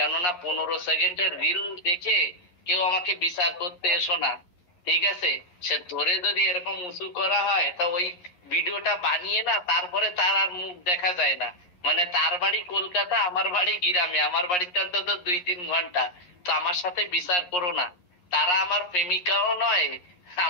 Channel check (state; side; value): late; right; 11 ms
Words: 15 সেকেন্ডের রিল দেখে কেউ আমাকে বিচার করতে এসো না, ঠিক আছে? সে ধরে যদি এরকম উঁচু করা হয় তা ওই ভিডিওটা বানিয়ে না, তারপরে তার আর মুখ দেখা যায় না। মানে তার বাড়ি কলকাতা, আমার বাড়ি গ্রামে, আমার বাড়িতে অন্তত 2-3 ঘন্টা। তো আমার সাথে বিচার করো না। তারা আমার প্রেমিকাও নয়,